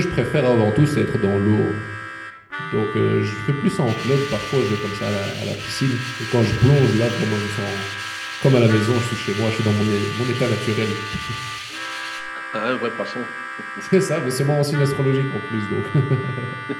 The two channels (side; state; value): both; identical; correlation 1.00